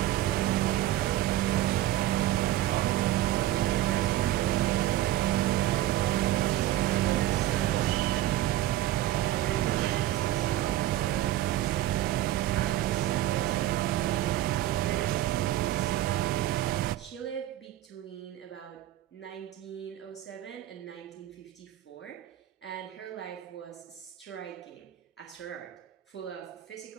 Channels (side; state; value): left; quieter; 14.3 dB